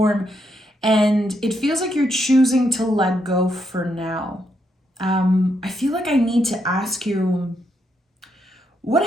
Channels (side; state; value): both; normal; correlation 0.78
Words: and it feels like you're choosing to let go for now. I feel like I need to ask you,